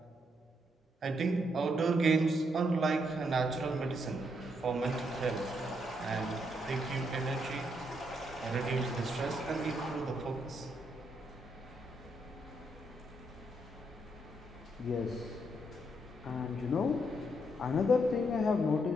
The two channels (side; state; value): both; normal; correlation 0.76